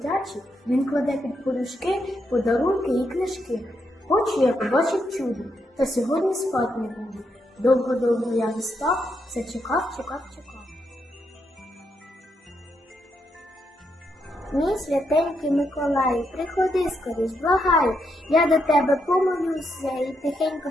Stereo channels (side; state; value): both; normal; correlation 0.80